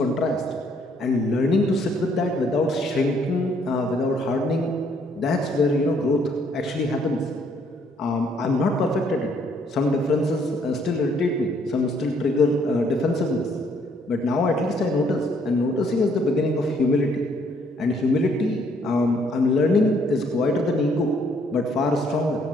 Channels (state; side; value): normal; both; correlation 0.66